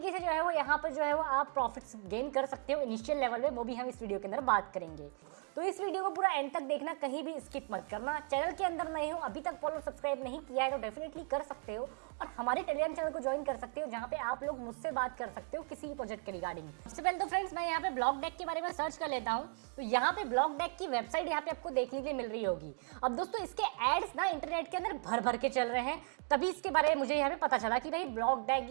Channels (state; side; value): quieter; left; 38.3 dB